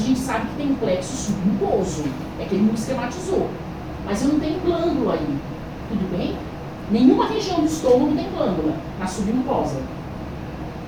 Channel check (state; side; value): identical; both; correlation 1.00